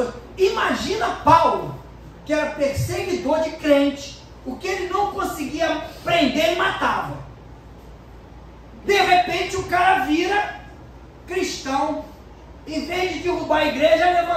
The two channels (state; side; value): identical; both; correlation 1.00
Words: Imagina Paulo, que era perseguidor de crente, o que ele não conseguia prender, ele matava. De repente o cara vira cristão, em vez de derrubar a igreja,